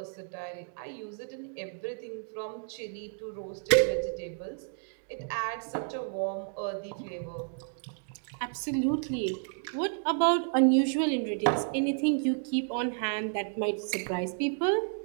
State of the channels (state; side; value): silent; left; digital silence